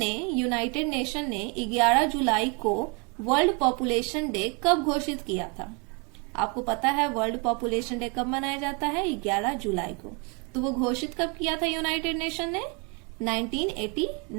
यूनाइटेड नेशन ने 11 जुलाई को वर्ल्ड पॉपुलेशन डे कब घोषित किया था? आपको पता है वर्ल्ड पॉपुलेशन डे कब मनाया जाता है? 11 जुलाई को। तो वो घोषित कब किया था यूनाइटेड नेशन ने?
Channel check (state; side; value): quieter; left; 33.1 dB